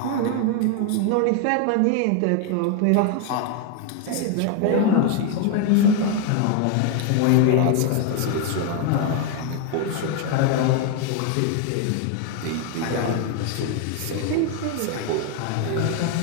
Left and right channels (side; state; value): both; different; correlation 0.01